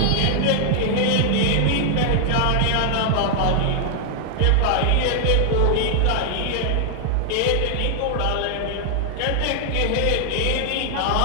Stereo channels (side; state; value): both; different; correlation 0.00